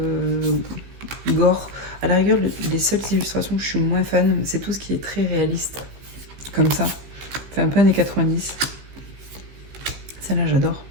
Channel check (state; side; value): late; left; 15 ms